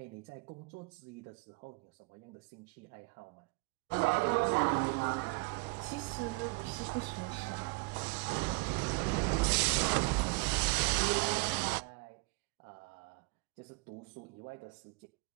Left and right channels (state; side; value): quieter; left; 28.9 dB